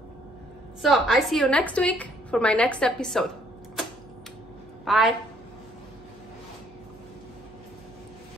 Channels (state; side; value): noise; right; hum, 25 dB below the sound